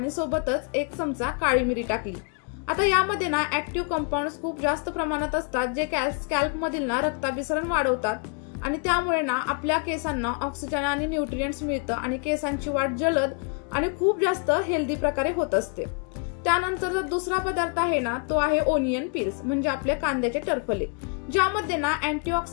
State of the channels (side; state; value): right; quieter; 35.1 dB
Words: सोबतच 1 चमचा काळी मिरी टाकली। आता यामध्ये ना ऍक्टिव्ह कंपाऊंड्स खूप जास्त प्रमाणात असतात जे स्कॅल्प मधील ना रक्ताभिसरण वाढवतात आणि त्यामुळे ना आपल्या केसांना ऑक्सिजन आणि न्यूट्रिएंट्स मिळतं आणि केसांची वाढ जलद आणि खूप जास्त हेल्दी प्रकारे होत असते। त्यानंतर जो दुसरा पदार्थ आहे ना तो आहे ओनियन पील्स म्हणजे आपले कांद्याचे टरफले, ज्यामध्ये ना